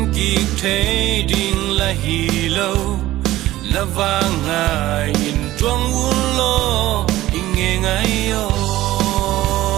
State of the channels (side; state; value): left; quieter; 15.8 dB